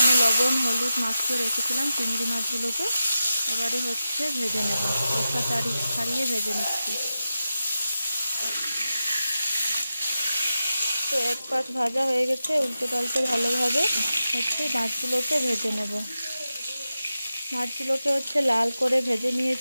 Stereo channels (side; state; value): both; inverted; correlation -0.91